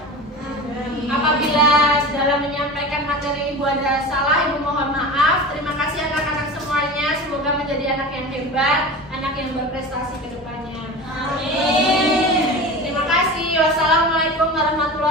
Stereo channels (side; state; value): both; normal; correlation 0.31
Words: Apabila dalam menyampaikan materi Ibu ada salah, Ibu mohon maaf. Terima kasih anak-anak semuanya. Semoga menjadi anak yang hebat, anak yang berprestasi ke depannya. Amin. Terima kasih. Wassalamualaikum